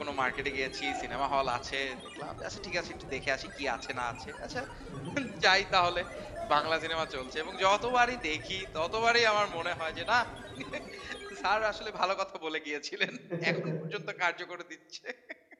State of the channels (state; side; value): identical; both; correlation 1.00